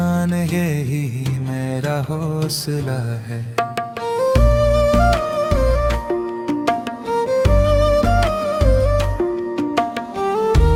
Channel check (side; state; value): both; identical; correlation 1.00